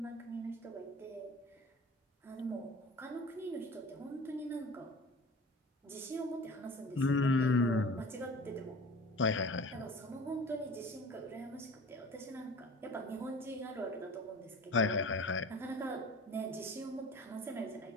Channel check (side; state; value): both; normal; correlation 0.40